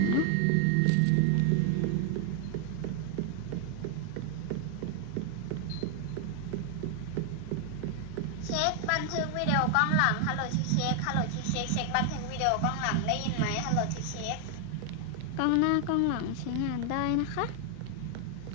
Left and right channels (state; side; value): different; both; correlation 0.00